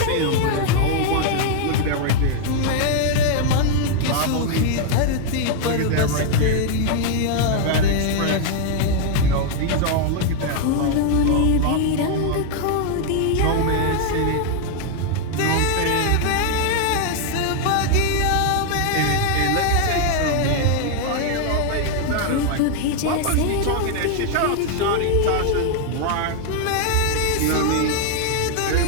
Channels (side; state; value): both; different; correlation 0.00